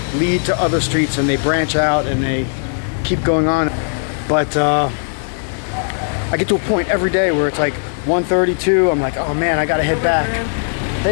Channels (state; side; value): silent; right; digital silence